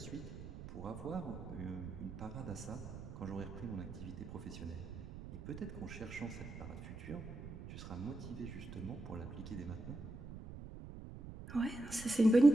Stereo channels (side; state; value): right; noise; rumble, 11 dB below the sound